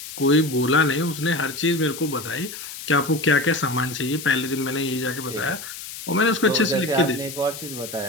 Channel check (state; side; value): noise; left; hiss, 11 dB below the sound